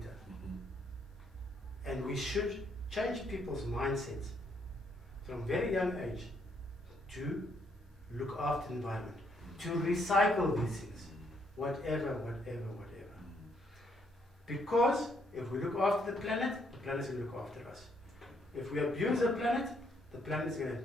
And we should change people's mindsets from very young age to look after the environment, to recycle these things, whatever. Because if we look after the planet's going to look after us. If we abuse the planet is going to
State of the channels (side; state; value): both; normal; correlation 0.72